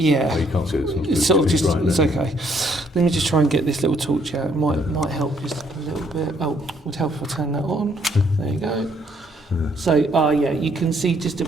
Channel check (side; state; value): both; normal; correlation 0.68